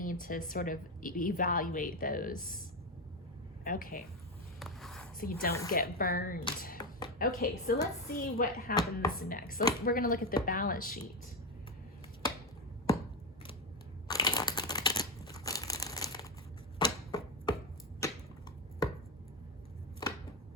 to sort of evaluate those. Okay, so you don't get burned. Okay, so let's see what happens next. So we're going to look at the balance sheet.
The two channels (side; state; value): both; normal; correlation 0.12